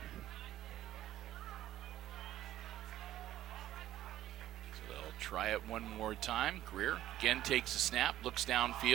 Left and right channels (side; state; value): left; quieter; 13.3 dB